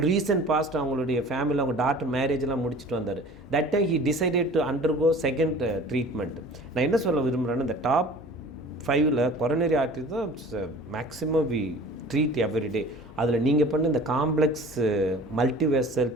ரீசன்ட் பாஸ்ட் அவங்களுடைய ஃபேமிலியில் அவங்க டாக்டர் மேரேஜெலாம் முடிச்சுட்டு வந்தார். That time he decided to undergo second treatment. நான் என்ன சொல்ல விரும்புகிறேன்னா, இந்த டாப் 5 கொரோனரி ஆர்டரி தான் மேக்ஸிமம் வி ட்ரீட் எவ்ரிடே. அதில் நீங்கள் பண்ண இந்த காம்ப்ளெக்ஸ் மல்டிவெசல்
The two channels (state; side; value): normal; both; correlation 0.44